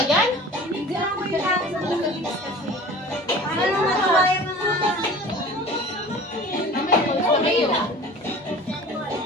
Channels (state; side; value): normal; both; correlation 0.41